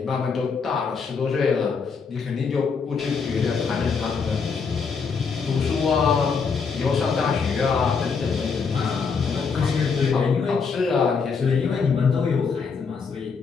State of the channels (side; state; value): right; quieter; 5.4 dB